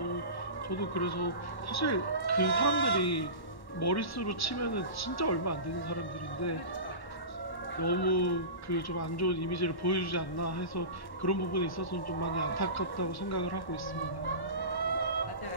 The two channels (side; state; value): right; late; 1.1 ms